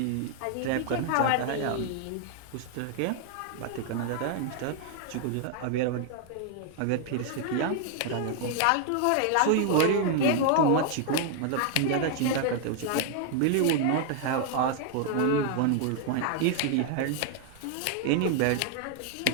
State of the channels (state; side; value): different; both; correlation 0.00